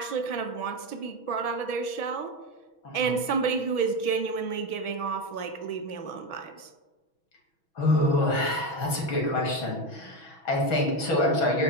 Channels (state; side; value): late; right; 6.2 ms